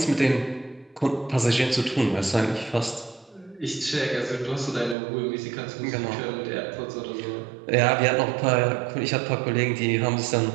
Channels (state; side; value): drops out; left; at 5.0 s